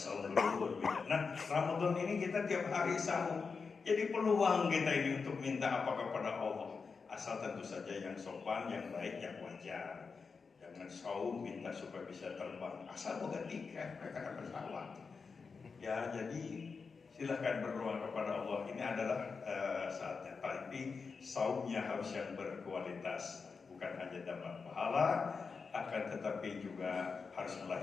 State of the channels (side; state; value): right; quieter; 5.0 dB